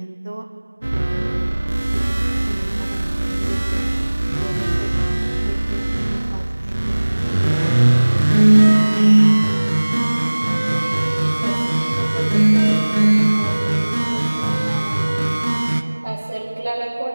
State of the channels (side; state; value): both; inverted; correlation -1.00